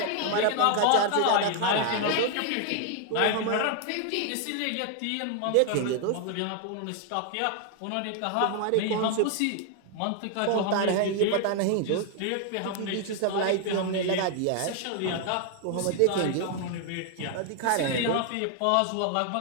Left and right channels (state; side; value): different; both; correlation 0.00